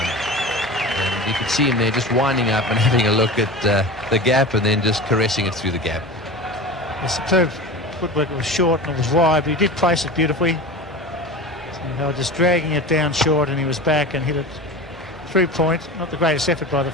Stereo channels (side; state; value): both; normal; correlation 0.31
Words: And you could see him there just winding up and having a look at the gap and then just caressing it through the gap. The superb footwork. It was short and it was wide, but he did place it beautifully. So they were just dragging it down short, and he was back and hit it through point. Not the greatest effort by the